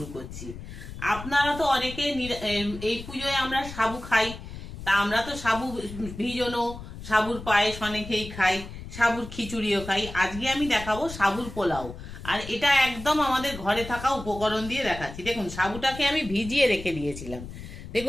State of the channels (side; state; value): left; noise; rumble, 12 dB below the sound